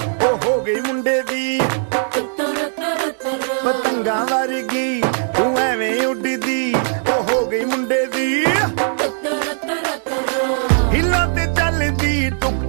ਓ ਹੋ ਗਈ ਮੁੰਡੇ ਦੀ ਪਤੰਗਾਂ ਵਰਗੀ ਤੂੰ ਐਵੇਂ ਉੱਡਦੀ ਓ ਹੋ ਗਈ ਮੁੰਡੇ ਦੀ ਹਿੱਲਾਂ ਤੇ ਚੱਲਦੀ ਟੁਕ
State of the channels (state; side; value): silent; left; digital silence